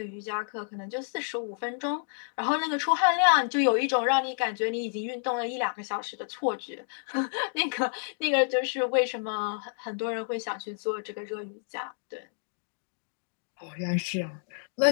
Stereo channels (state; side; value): silent; right; digital silence